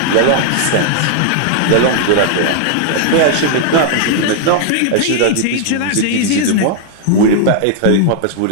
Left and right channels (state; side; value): different; both; correlation -0.01